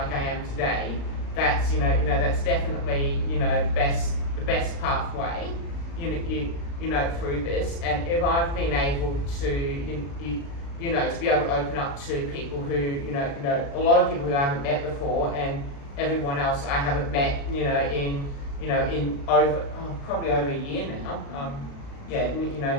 I am today. That's, that's definitely, the best pathway, through this. And if I've been able to, to be able to open up to people who, a lot of people who I haven't met before, and everyone else I haven't met, in over, probably over a year now.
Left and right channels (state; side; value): late; right; 35 ms